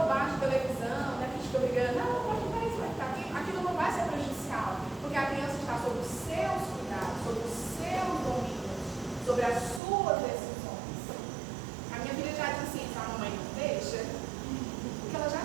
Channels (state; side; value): drops out; left; at 9.8 s